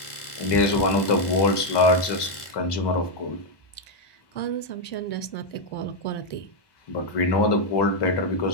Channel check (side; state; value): right; late; 1.2 ms